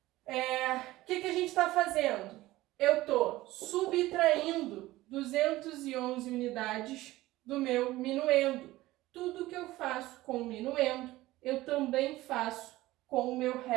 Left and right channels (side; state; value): left; quieter; 17.4 dB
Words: O que a gente está fazendo? Eu estou subtraindo 200 211 unidades do meu minuendo. Tudo que eu faço com o minuendo, eu também faço com o meu